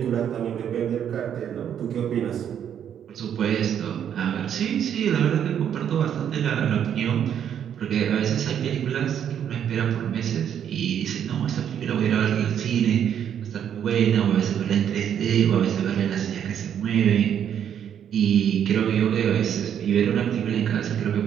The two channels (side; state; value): left; quieter; 9.1 dB